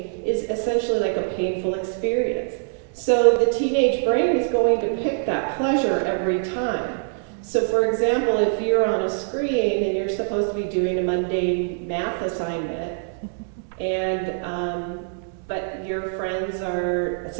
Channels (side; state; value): left; silent; digital silence